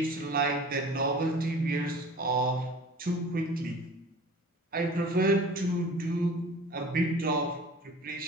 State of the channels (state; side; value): normal; both; correlation 0.43